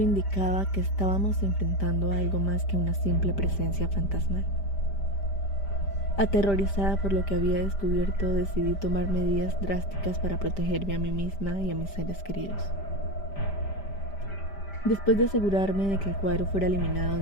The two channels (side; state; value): right; late; 5.1 ms